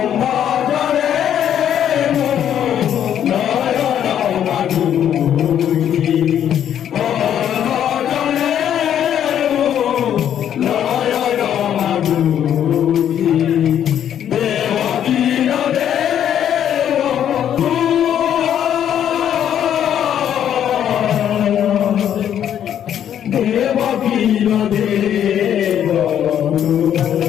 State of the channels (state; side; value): quieter; right; 9.8 dB